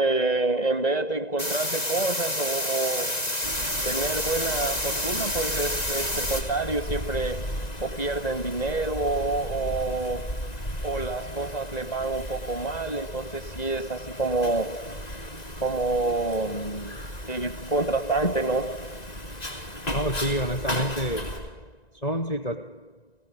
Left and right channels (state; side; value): late; right; 1.9 ms